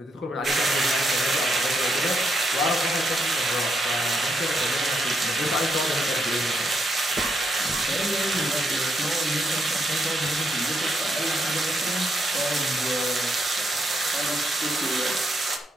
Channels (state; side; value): normal; both; correlation 0.78